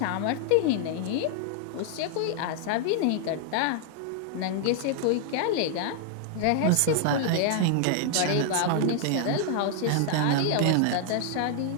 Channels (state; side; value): different; both; correlation -0.01